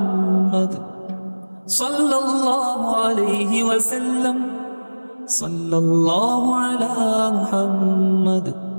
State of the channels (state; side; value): inverted; both; correlation -1.00